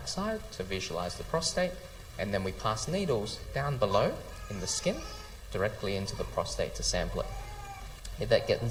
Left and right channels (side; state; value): both; identical; correlation 1.00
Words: to visualize the prostate, and then we pass needles down below in the skin directly into the prostate to sample it. That